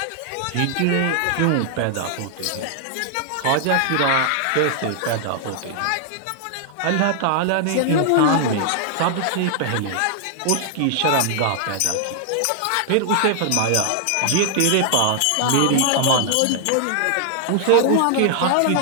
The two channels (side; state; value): both; different; correlation 0.00